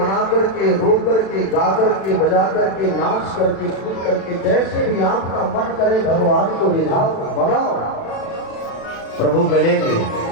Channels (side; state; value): right; late; 36 ms